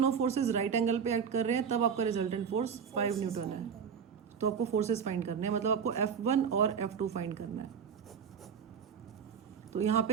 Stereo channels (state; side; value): quieter; left; 7.0 dB